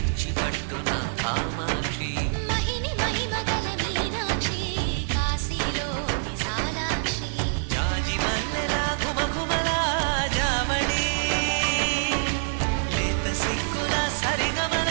పట్టున కామాక్షి మహిని మహిమగల మీనాక్షి కాశీలో విశాలాక్షి జాజి మల్లెలా గుమగుమలా జావళి లేత సిగ్గుల సరిగమల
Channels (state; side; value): silent; left; digital silence